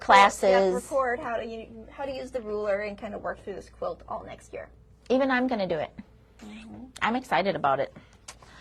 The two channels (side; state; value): both; identical; correlation 1.00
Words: Record how to use the ruler and kind of work through this quilt all next year. Even I'm going to do it. I'm excited about it.